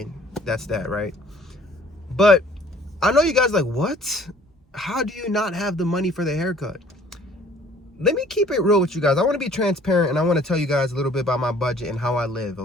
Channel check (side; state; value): both; normal; correlation 0.55